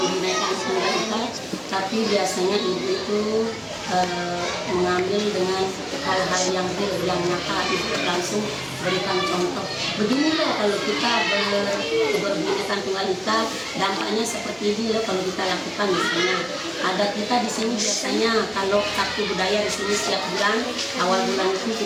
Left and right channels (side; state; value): both; identical; correlation 1.00